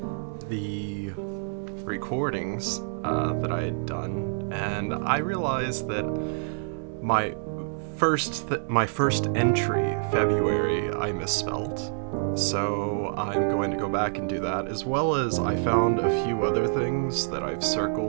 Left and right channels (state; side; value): silent; left; digital silence